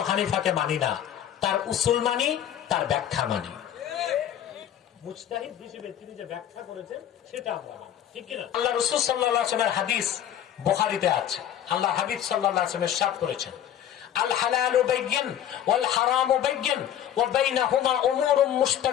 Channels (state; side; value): quieter; right; 10.6 dB